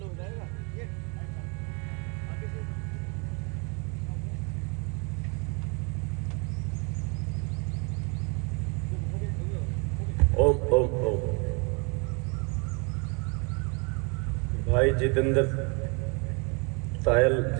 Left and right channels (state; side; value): quieter; left; 33.2 dB